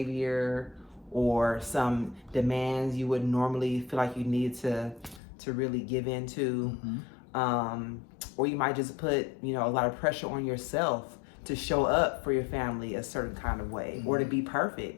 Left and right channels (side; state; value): right; drops out; at 5.2 s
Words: or some demands you would normally feel like you need to really give into. Or you might just put, a lot of pressure on yourself to show up for your family a certain kind of way or to be